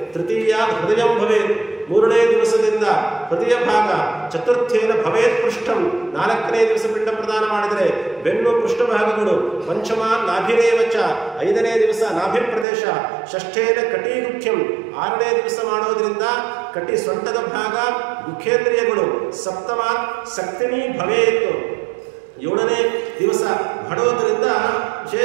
ತೃತೀಯ ಹೃದಯಂ ಭವೇತ್ 3ನೇ ದಿವಸದಿಂದ ಹೃದಯ ಭಾಗ. ಚತುರ್ಥೇನ ಭವೇತ್ ಪೃಷ್ಠಂ 4ನೇ ದಿವಸ ಪಿಂಡ ಪ್ರದಾನ ಮಾಡಿದರೆ ಬೆನ್ನು ಪೃಷ್ಠಭಾಗಗಳು. ಪಂಚಮ ನಾಭಿರೇವಚ 5ನೇ ದಿವಸ ನಾಭಿ ಪ್ರದೇಶ. ಷಷ್ಠೇನ ಕಟೀಗುಖ್ಯಂ 6ನೇ ದಿವಸ ಮಾಡೋದ್ರಿಂದ ಕಟಿ ಸೊಂಟದ ಭಾಗ ಮುಖೇಂದ್ರಿಯಗಳು. ಸಪ್ತಮ ಸಕ್ತಿನಿ ಭವೇತ್ 7ನೇ ದಿವಸ ಮಾಡೋದ್ರಿಂದ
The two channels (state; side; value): drops out; left; at 12.7 s